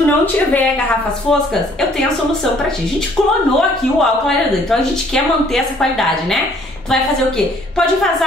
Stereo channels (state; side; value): normal; both; correlation 0.60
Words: não tiver garrafas foscas, eu tenho a solução pra ti. A gente clonou aqui o álcool clareador, então a gente quer manter essa qualidade, né? Tu vai fazer o quê? Pode